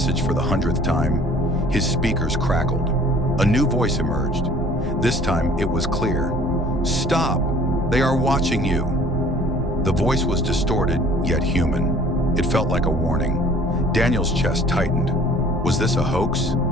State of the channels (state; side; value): normal; both; correlation 0.52